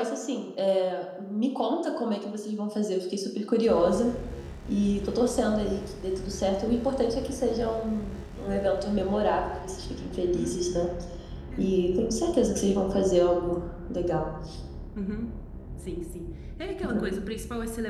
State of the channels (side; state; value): both; identical; correlation 1.00